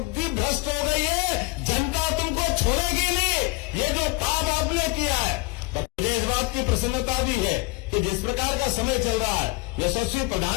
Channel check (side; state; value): right; quieter; 23.4 dB